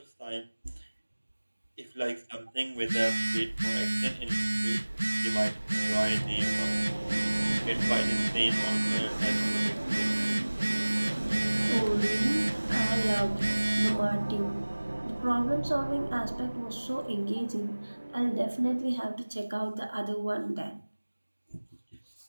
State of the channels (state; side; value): inverted; both; correlation -1.00